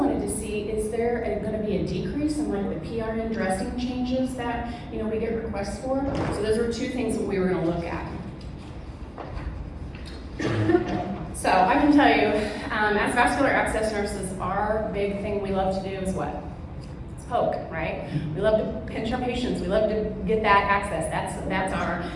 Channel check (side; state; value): both; identical; correlation 1.00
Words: to see, is there going to be a decrease in like the PRN dressing changes that we get requests for? So those were 2 things that we were going to look at. So I can tell you, as vascular access nurses, our big thing we love to do is what? It's poke, right? We love to pinch our patients. We love to get that access. That's